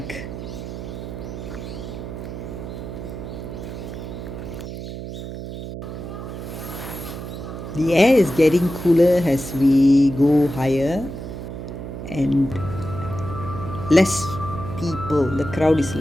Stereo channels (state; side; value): noise; right; hum, 8 dB below the sound